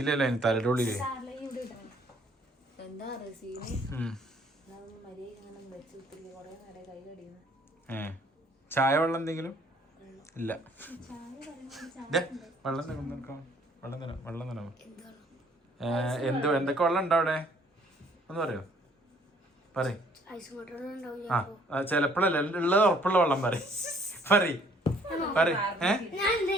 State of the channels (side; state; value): both; normal; correlation 0.61